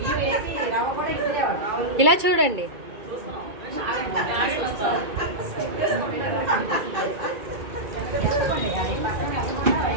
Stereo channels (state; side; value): late; left; 2.3 ms